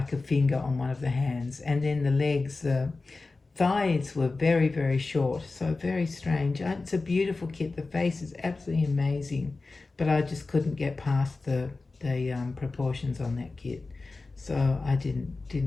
a finger on one of the hands, and then the legs, the thighs were very, very short, so very strange. It's a beautiful kit. The face is absolutely amazing, but I just couldn't get past the proportions on that kit, so I didn't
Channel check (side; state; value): right; quieter; 3.6 dB